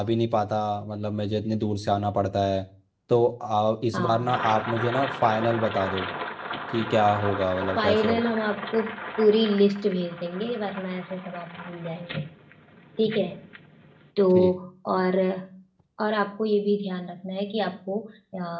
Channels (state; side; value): identical; both; correlation 1.00